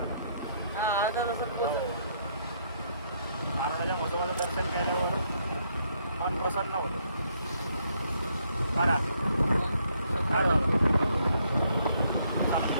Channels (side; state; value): both; inverted; correlation -0.72